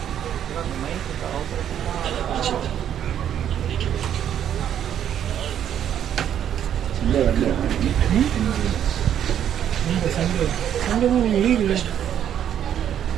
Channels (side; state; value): left; quieter; 9.9 dB